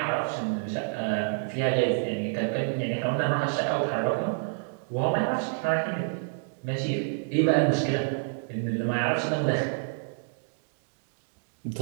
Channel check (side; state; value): left; silent; digital silence